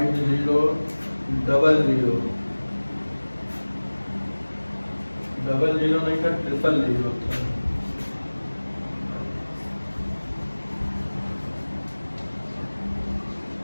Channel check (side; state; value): both; inverted; correlation -1.00